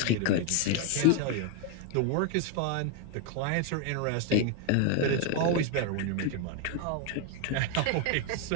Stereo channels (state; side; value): different; both; correlation 0.01